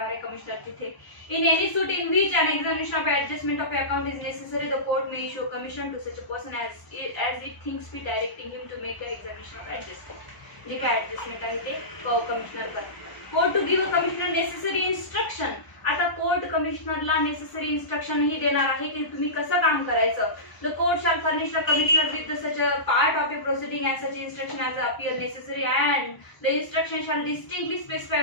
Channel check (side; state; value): right; late; 1.0 ms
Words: आहे कमिशनर तिथे. In any suit in which an examination of adjustment of account is necessary the court may issue commission to such a person as it thinks be, directing him to make a examination of adjustment. जे काय adjustment आहे ते commissioner करतात. Court to give a commissioner necessary instruction. आता court कमिशनरला necessary instruction ही देणार आहे की तुम्ही कसं काम करायचं. The court shall furnish the commissioner with such a part of a proceeding as such instruction as appear necessary and the instruction shall distinctly specify